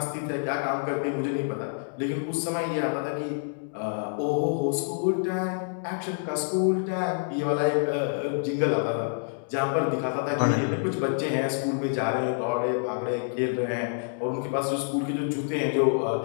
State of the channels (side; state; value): right; silent; digital silence